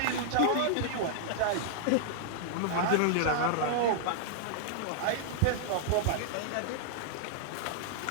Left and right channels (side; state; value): both; different; correlation -0.01